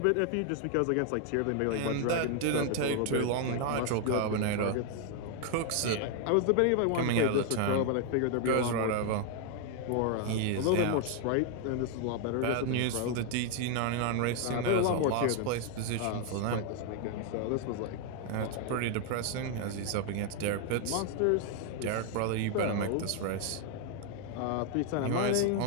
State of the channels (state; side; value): different; both; correlation 0.00